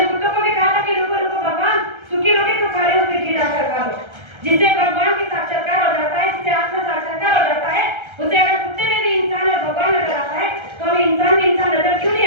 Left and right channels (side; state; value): left; late; 1.3 ms